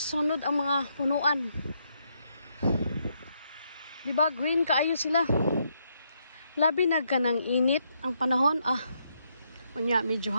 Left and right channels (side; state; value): both; inverted; correlation -0.77